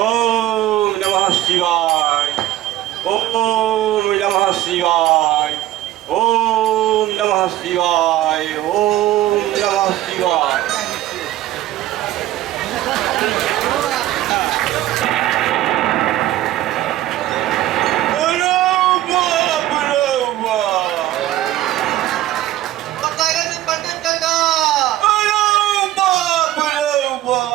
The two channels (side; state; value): left; quieter; 14.3 dB